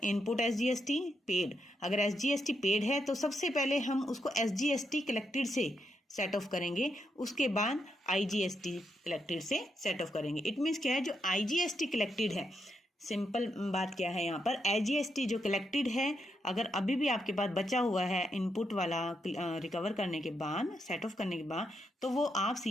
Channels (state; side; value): normal; both; correlation 0.81